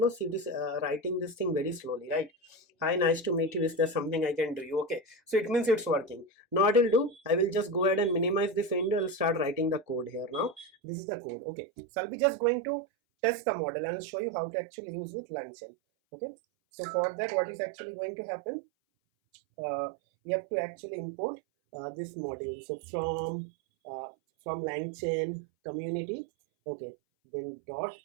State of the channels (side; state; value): left; drops out; at 10.7 s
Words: See, it is writing this thing very slowly, right? Hi, nice to meet you, is there something I can do you? Okay, so it means it's working. Now what I'll do, I will just go ahead and minimize this window. I'll start writing the code here. Now this is the code. Okay, so I'll be just going to test the model and I'll show you how to actually use with LangChain. Okay, so for that, what is actually going to happen, you have to actually import this module. So from LangChain community, okay, then dot